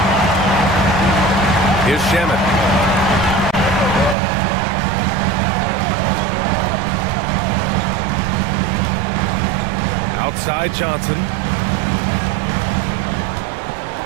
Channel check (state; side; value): drops out; left; at 4.2 s